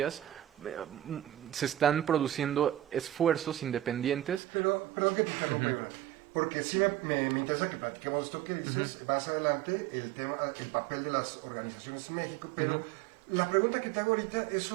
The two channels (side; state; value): left; drops out; at 4.4 s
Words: se están produciendo esfuerzos independientes. Pero, perdón que te interrumpa, porque sí me interesa que platiquemos esto que dices más adelante, el papel de las organizaciones en México, pero la pregunta que te hago ahorita es